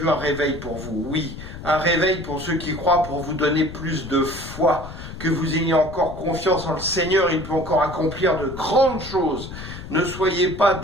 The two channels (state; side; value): noise; left; rumble, 11 dB below the sound